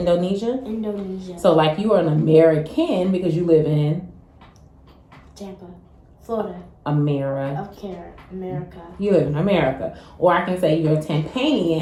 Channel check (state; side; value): identical; both; correlation 1.00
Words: Indonesia. So you are an American because you live in Tampa, Florida. America. America. You live in America. Or I can say you're a